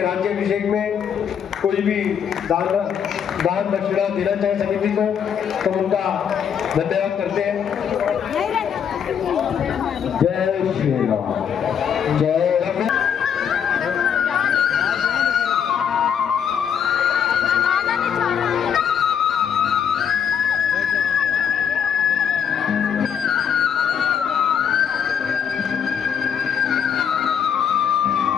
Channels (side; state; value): right; quieter; 8.0 dB